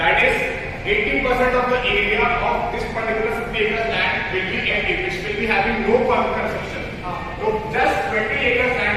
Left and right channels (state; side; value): identical; both; correlation 1.00